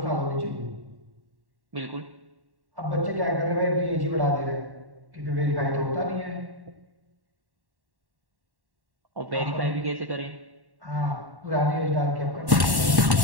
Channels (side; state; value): left; late; 1.1 ms